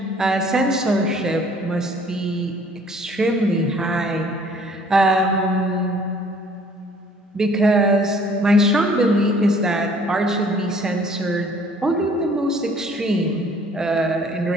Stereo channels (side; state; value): both; normal; correlation 0.56